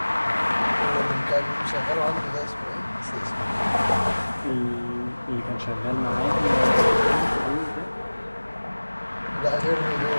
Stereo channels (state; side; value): inverted; both; correlation -1.00